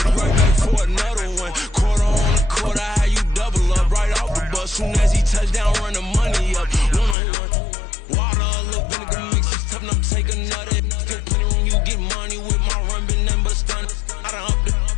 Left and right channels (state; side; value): drops out; right; at 7.2 s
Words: right back for another one. Quarter on the quarter, how you double up right off the bus. Soon as he touched down, run the money up. One-on-one. Water, a little vinegar mix, it's tough enough to take another. Still plenty room, you get money with my run, been nothing but a stun. I done upped